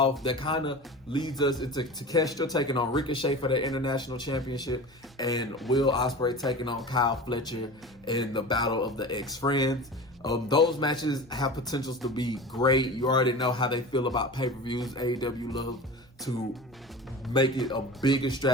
That kind of leads us into Takeshita taking on Ricochet for the International Championship, and Will Ospreay taking on Kyle Fletcher in the Battle of the Ex-Friends. Those matches have potentials to be great. You already know how they feel about pay-per-views. AEW loves to make it a big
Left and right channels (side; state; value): both; normal; correlation 0.33